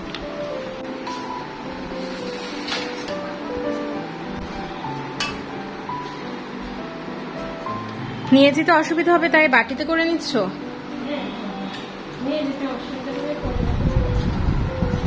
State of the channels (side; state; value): both; identical; correlation 1.00